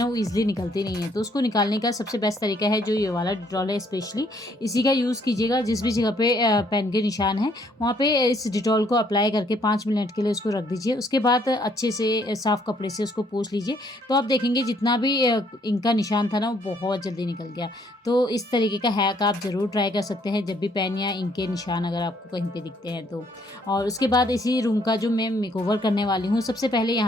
वो ईजिली निकलती नहीं है। तो उसको निकालने का सबसे बेस्ट तरीका है जो ये वाला डिटॉल है, स्पेशली इसी का यूज़ कीजिएगा। जिस भी जगह पे पेन के निशान है वहाँ पे इस डिटॉल को अप्लाई करके 5 मिनट के लिए उसको रख दीजिए। उसके बाद अच्छे से साफ़ कपड़े से उसको पोंछ लीजिए, तो आप देखेंगे जितना भी इंक का निशान था ना वो बहुत जल्दी निकल गया। तो इस तरीके का हैक आप ज़रूर ट्राई कर सकते हैं जब भी पेन या इंक के निशान अगर आपको कहीं पे दिखते हैं तो। और उसके बाद इसी रूम का जो मैं मेकओवर करने वाली हूँ, सबसे पहले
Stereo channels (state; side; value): normal; both; correlation 0.66